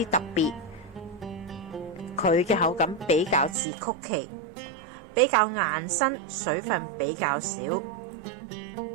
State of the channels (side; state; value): left; drops out; at 3.6 s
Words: 特別，佢嘅口感比較似曲奇，比較硬身，水分比較少。